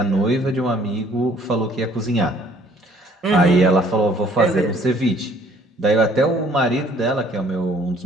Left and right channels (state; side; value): normal; both; correlation 0.59